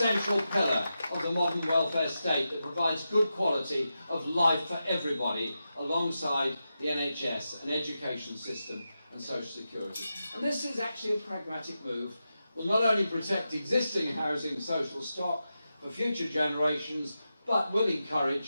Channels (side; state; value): both; inverted; correlation -0.90